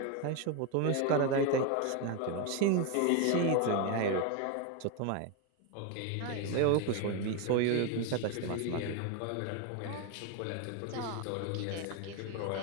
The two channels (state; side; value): different; both; correlation 0.01